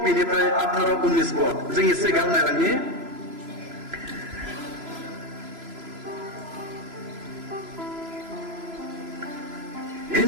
बेनिफ्राय 18-19 पद जों एसे गाहाम नायलांनि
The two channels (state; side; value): late; left; 3.0 ms